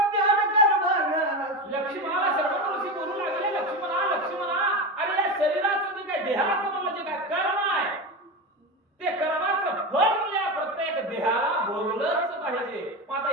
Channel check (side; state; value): both; normal; correlation 0.20